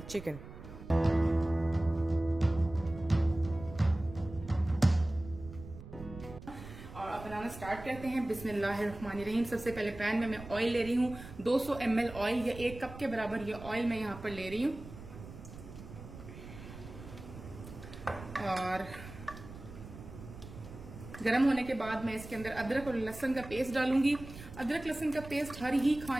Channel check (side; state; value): right; noise; rumble, 14 dB below the sound